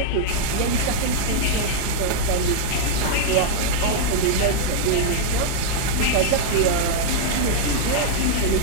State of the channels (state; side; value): different; both; correlation -0.02